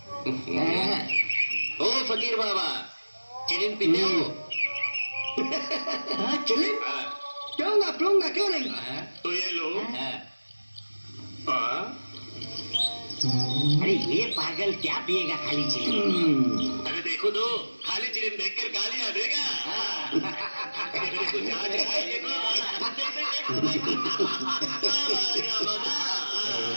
ओ फकीर बाबा, चिलिम पीते हो? चिलिम पीऊंगा, क्यों नहीं. तो ये लो. अरे ये पागल क्या पिएगा खाली चिलिम. अरे देखो तो, खाली चिलिम देखकर गालियां देगा. कुछ आज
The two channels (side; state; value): both; inverted; correlation -1.00